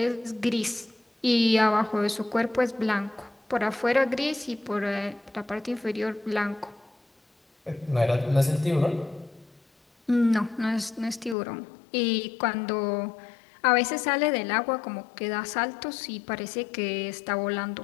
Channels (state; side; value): drops out; right; at 11.4 s